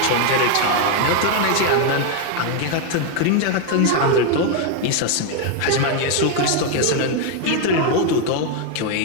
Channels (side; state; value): both; different; correlation 0.01